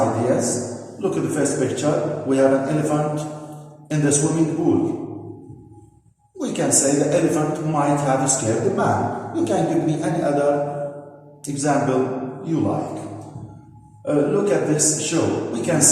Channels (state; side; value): identical; both; correlation 1.00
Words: Look at the first picture. We have an elephant in the swimming pool. We can say the elephant might have scared the man. You can give me any other example you like. Look at this show. We can